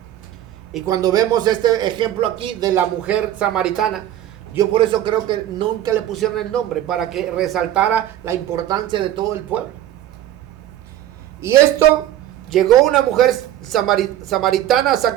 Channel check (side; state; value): left; quieter; 12.4 dB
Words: Y cuando vemos este ejemplo aquí de la mujer samaritana, yo por eso creo que nunca le pusieron el nombre, para que resaltara la importancia de todo el pueblo. Y esto, llegó una mujer samaritana a